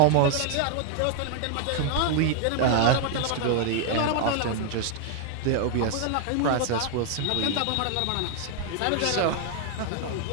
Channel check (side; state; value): both; different; correlation 0.00